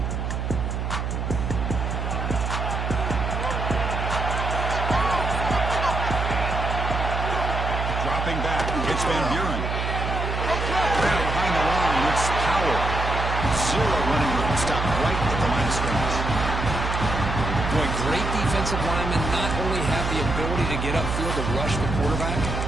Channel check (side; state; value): right; noise; hum, 2 dB below the sound